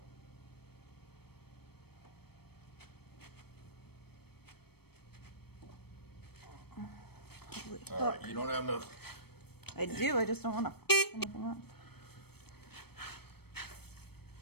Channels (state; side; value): late; right; 0.97 ms